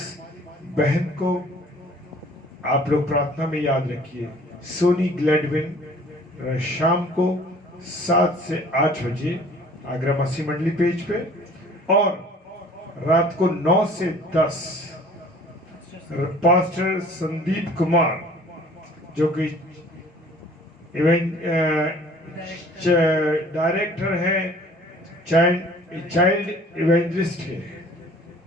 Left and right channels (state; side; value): normal; both; correlation 0.51